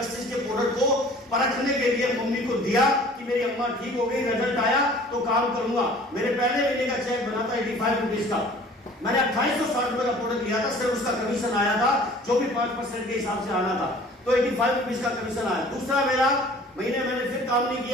के प्रोडक्ट को परखने के लिए मम्मी को दिया कि मेरी अम्मा ठीक हो गई, रिजल्ट आया तो काम करूंगा। मेरे पहले महीने का चेक बना था 85 रुपीज का, मैंने 2860 रुपए का प्रोडक्ट लिया था, सिर्फ उसका कमीशन आया था जो भी 5% के हिसाब से आना था, तो 85 रुपीज का कमीशन आया। दूसरा मेरा महीने मैंने फिर काम नहीं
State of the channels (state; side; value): normal; both; correlation 0.49